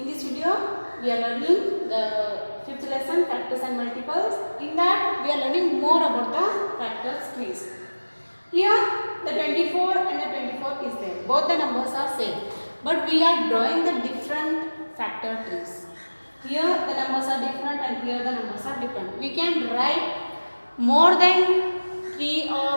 this video, we are learning the fifth lesson, factors and multiples. In that, we are learning more about the factors trees. Here, the 24 and the 24 is there. Both the numbers are same, but we are drawing the different factor trees. Here, the numbers are different, and here the numbers are different. We can write more than 3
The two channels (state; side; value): inverted; both; correlation -1.00